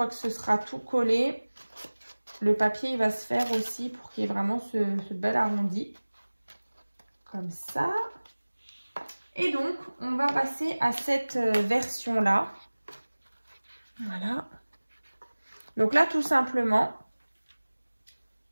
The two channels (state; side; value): inverted; both; correlation -1.00